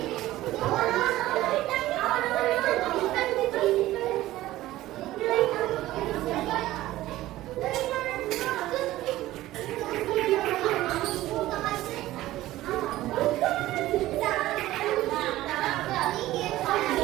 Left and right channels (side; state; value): left; quieter; 15.9 dB